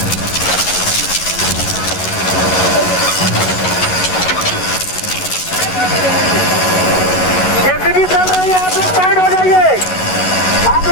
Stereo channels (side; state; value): right; late; 11 ms